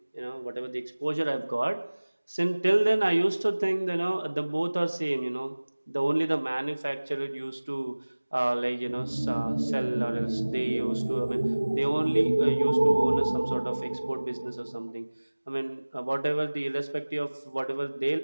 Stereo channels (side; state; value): both; inverted; correlation -1.00